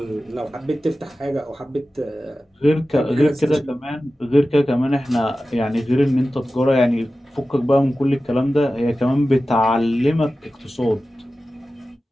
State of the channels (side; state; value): both; normal; correlation 0.95